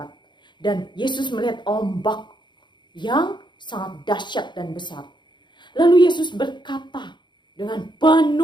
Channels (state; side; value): late; right; 0.22 ms